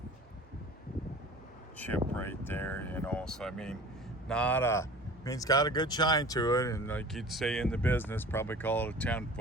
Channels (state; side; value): normal; both; correlation 0.41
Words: chip right there, so I mean, it's got a good shine to it, and like you'd say in the business, probably call it a